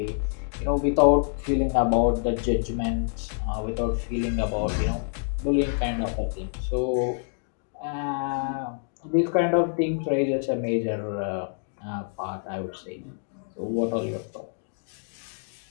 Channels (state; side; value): silent; right; digital silence